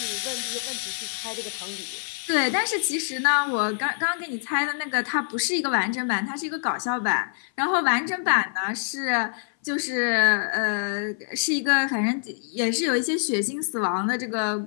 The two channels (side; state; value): right; silent; 58 dB below the other